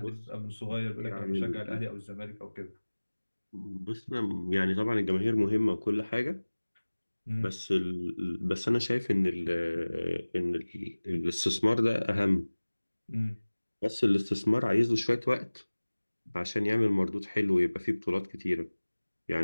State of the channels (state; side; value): inverted; both; correlation -1.00